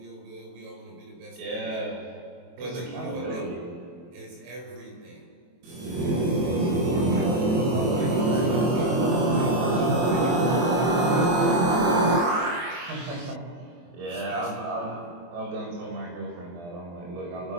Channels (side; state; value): left; late; 23 ms